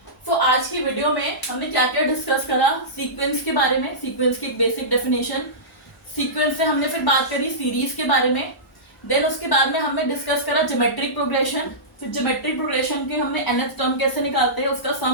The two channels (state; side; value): normal; both; correlation -0.18